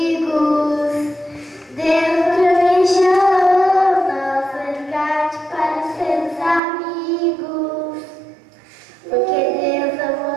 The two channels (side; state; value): left; drops out; at 6.6 s